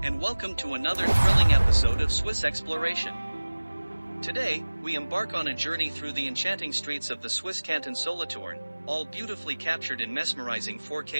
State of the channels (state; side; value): inverted; both; correlation -1.00